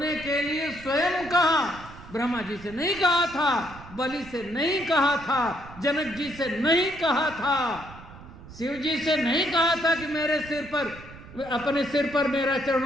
के लिए स्वयं कहा। ब्रह्मा जी से नहीं कहा था, बलि से नहीं कहा था, जनक जी से नहीं कहा था, शिव जी से नहीं कहा था कि मेरे सिर पर, अपने सिर पर मेरा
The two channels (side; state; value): right; noise; rumble, 17 dB below the sound